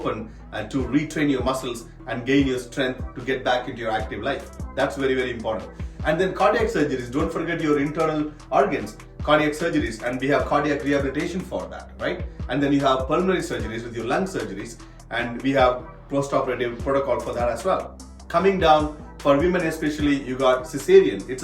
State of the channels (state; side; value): identical; both; correlation 1.00